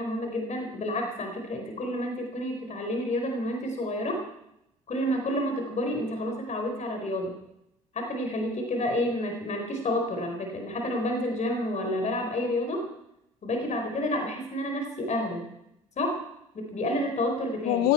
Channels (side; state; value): both; normal; correlation 0.43